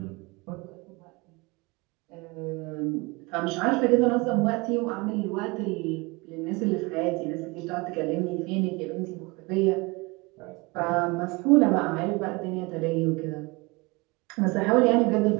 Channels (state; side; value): quieter; left; 25.7 dB